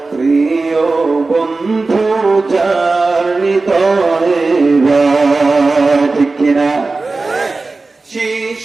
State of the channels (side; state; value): left; quieter; 3.6 dB